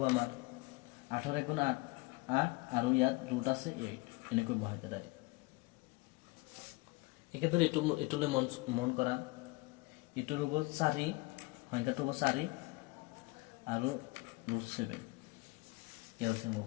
আমাৰ 8ৰ 1 গুণ 8 আৰু ইয়াত ৰুট আছে 8, এনেকৈ বহাই দিয়া ডাইৰেক্ট। একেদৰে এইটোলৈ মন কৰা, এইটোৰ হ'ব 4, সংখ্যাটো হ'ব 4 আৰু ৰুট 7 এলচিএম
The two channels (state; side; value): quieter; right; 23.9 dB